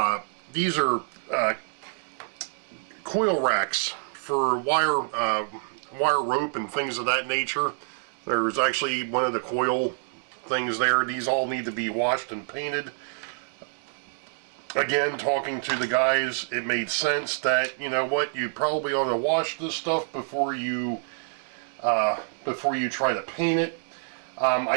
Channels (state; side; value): silent; left; digital silence